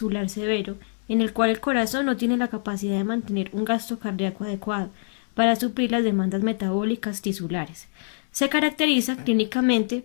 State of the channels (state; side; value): silent; right; digital silence